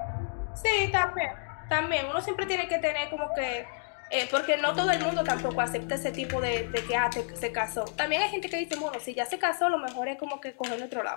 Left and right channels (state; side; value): silent; right; digital silence